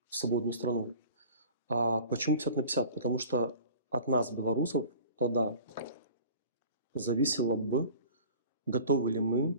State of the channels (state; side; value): inverted; both; correlation -0.43